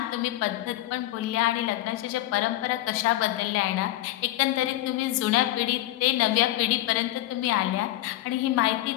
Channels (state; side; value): quieter; right; 16.1 dB